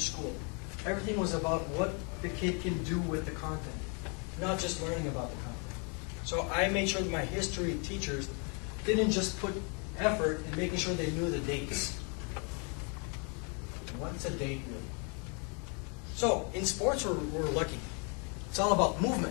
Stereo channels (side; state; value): right; quieter; 36.1 dB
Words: school. Everything was about what the kid can do with the content, not just learning about the content. So I made sure that my history teachers didn't just put effort in making sure they knew the dates. What's a date really? So in sports, we're lucky. It's all about